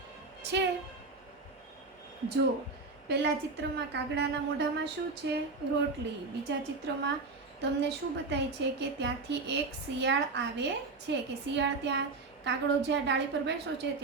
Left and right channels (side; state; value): left; quieter; 3.8 dB